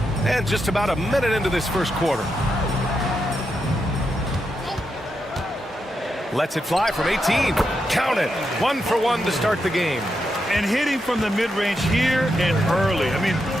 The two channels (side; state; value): both; normal; correlation 0.84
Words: And just about a minute into this first quarter. Lets it fly from 18. Count it. 1 for 1 to start the game. And hitting from the mid-range here and early. I mean,